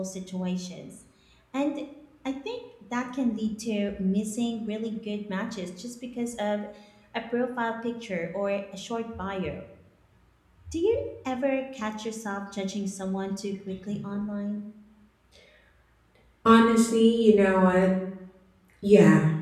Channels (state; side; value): identical; both; correlation 1.00